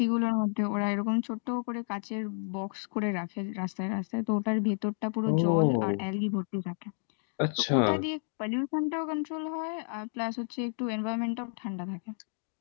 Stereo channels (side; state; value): right; silent; digital silence